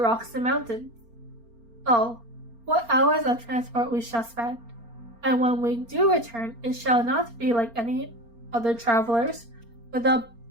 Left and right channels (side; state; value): left; late; 4.3 ms